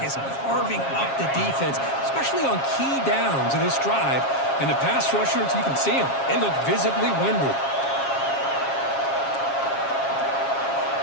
is carving up the defense, especially on key downs of this drive. And the pass rushers, you can see them. They look visibly winded.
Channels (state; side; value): late; right; 7.4 ms